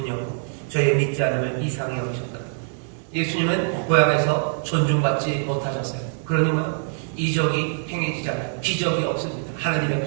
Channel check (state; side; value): silent; left; digital silence